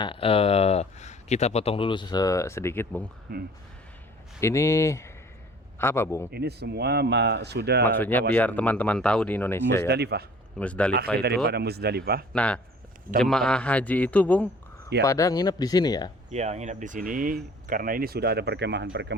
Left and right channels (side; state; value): both; normal; correlation 0.51